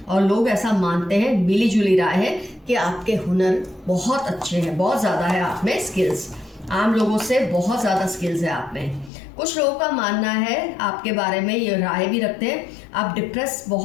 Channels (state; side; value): drops out; right; at 9.1 s